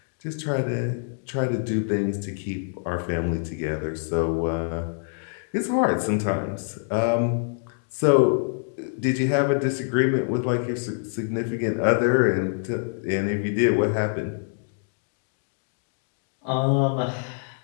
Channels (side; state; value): right; silent; digital silence